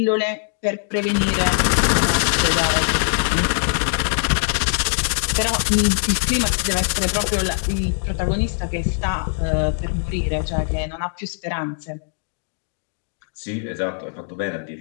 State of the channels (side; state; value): right; silent; digital silence